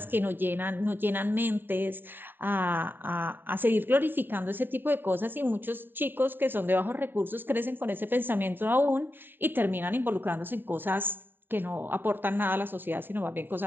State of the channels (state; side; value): late; left; 0.095 ms